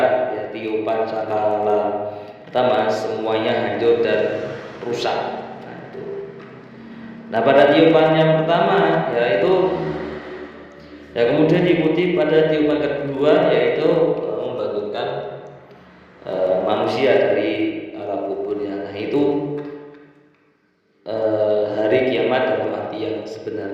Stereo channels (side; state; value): both; identical; correlation 1.00